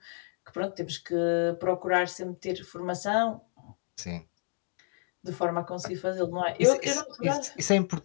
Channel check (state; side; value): silent; right; 58 dB below the other